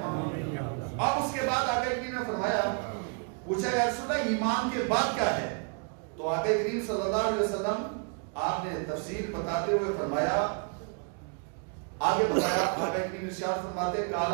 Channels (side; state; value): left; quieter; 37.9 dB